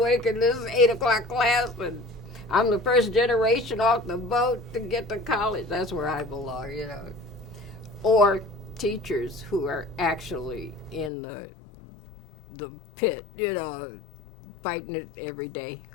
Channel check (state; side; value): drops out; right; at 11.1 s